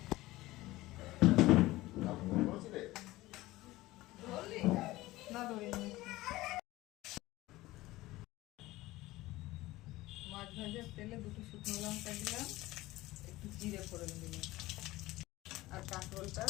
না ধরিনি। মাছ ভাজার তেলে দুটো শুকনো লঙ্কা দিলাম, একটু জিরে ফোড়ন দিলাম, আর কাঁকরোলটা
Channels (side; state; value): right; quieter; 18.3 dB